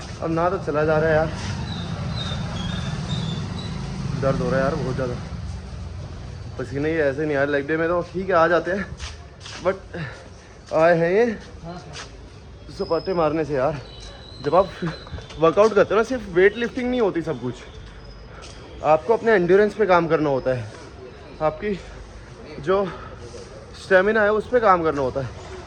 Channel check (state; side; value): identical; both; correlation 1.00